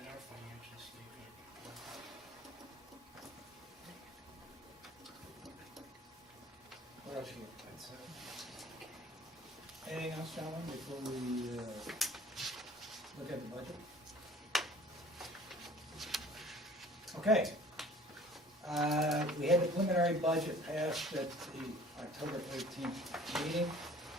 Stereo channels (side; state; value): both; normal; correlation 0.50